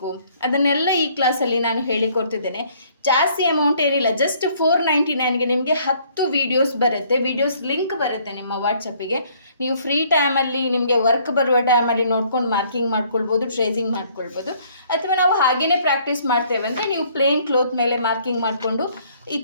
ಅದನ್ನೆಲ್ಲ ಈ ಕ್ಲಾಸಲ್ಲಿ ನಾನು ಹೇಳಿಕೊಡ್ತಿದ್ದೇನೆ. ಜಾಸ್ತಿ ಅಮೌಂಟ್ ಏನಿಲ್ಲ, ಜಸ್ಟ್ 499ಗೆ ನಿಮಗೆ 10 ವೀಡಿಯೋಸ್ ಬರುತ್ತೆ. ವೀಡಿಯೋಸ್ ಲಿಂಕ್ ಬರುತ್ತೆ ನಿಮ್ಮ ವಾಟ್ಸಪ್ಪಿಗೆ. ನೀವು ಫ್ರೀ ಟೈಮಲ್ಲಿ ನಿಮಗೆ ವರ್ಕ್ ಬರುವ ಟೈಮಲ್ಲಿ ನೋಡ್ಕೊಂಡು ಮಾರ್ಕಿಂಗ್ ಮಾಡ್ಕೊಳ್ಬೋದು, ಟ್ರೇಸಿಂಗ್ ಮಾಡ್ಕೊಳ್ಬೋದು. ಅಥವಾ ನಾವು ಹಾಗೇ ಪ್ರಾಕ್ಟೀಸ್ ಮಾಡ್ತೇವೆ ಅಂದರೆ ನೀವು ಪ್ಲೇನ್ ಕ್ಲೋತ್ ಮೇಲೆ ಮಾರ್ಕಿಂಗ್ ಮಾಡಿಕೊಂಡು ಈ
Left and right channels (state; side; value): inverted; both; correlation -0.62